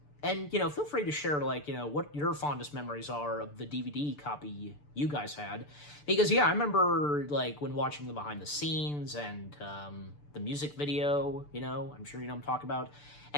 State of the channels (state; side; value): late; right; 6.8 ms